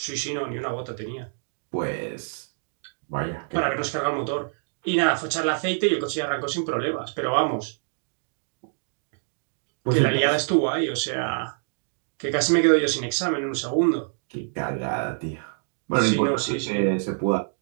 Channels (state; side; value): silent; left; digital silence